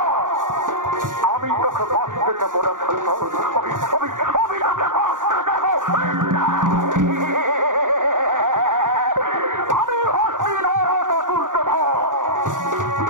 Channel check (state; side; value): late; left; 0.88 ms